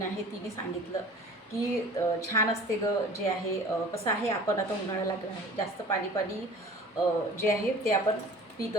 आहे तिने सांगितलं की छान असते गं. जे आहे कसं आहे, आपण आता उन्हाळा लागला आहे, जास्त पाणी पाणी जे आहे ते आपण पित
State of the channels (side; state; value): both; normal; correlation 0.44